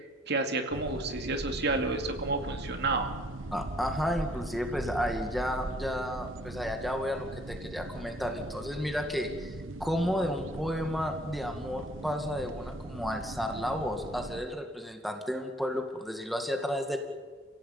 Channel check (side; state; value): both; normal; correlation 0.59